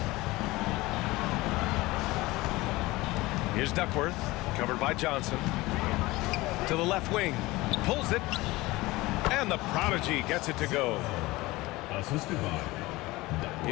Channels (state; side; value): quieter; right; 20.3 dB